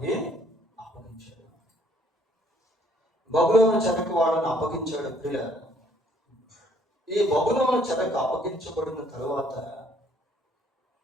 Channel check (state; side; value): normal; both; correlation 0.63